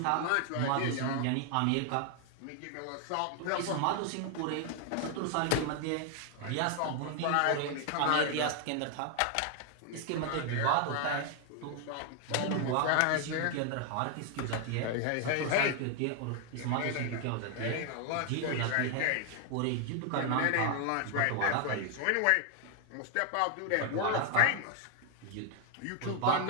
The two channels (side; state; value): both; different; correlation 0.00